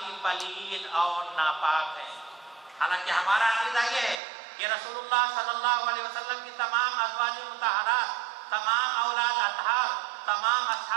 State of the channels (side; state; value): left; drops out; at 4.2 s